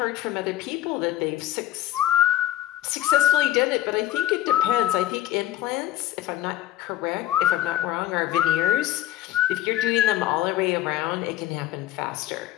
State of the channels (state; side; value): quieter; right; 13.5 dB